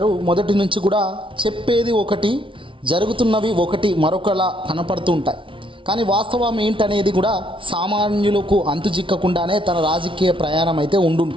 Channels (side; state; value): left; late; 0.25 ms